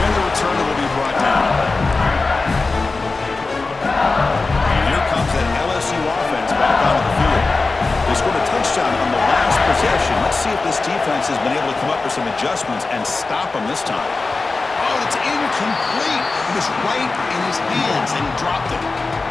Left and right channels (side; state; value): right; quieter; 3.7 dB